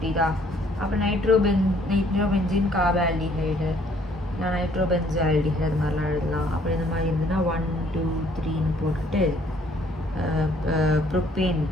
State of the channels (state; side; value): normal; both; correlation 0.63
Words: அப்போ நைட்ரோபென்சின் கார்பால்டிஹைடு, இல்லை நைட்ரோபென்சால்டிஹைடு அது மாதிரிலாம் எழுதலாம். அப்படி இந்த மாதிரி இருந்ததுன்னா 1 2 3ன்னு போட்டுட்டு ப்ரோப்பேன்